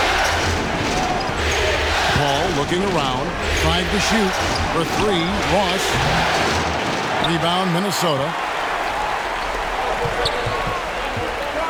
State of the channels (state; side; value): identical; both; correlation 1.00